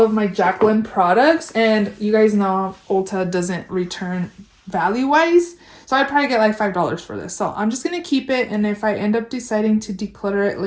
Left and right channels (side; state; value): both; identical; correlation 1.00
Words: my Jaclyn products. And you guys know Ulta doesn't return value-wise. So I'd probably get like $5 for this. So I'm just going to keep it. And if I end up deciding to declutter it